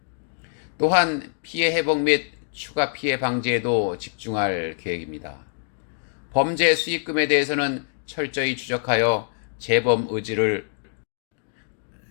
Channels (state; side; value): silent; right; digital silence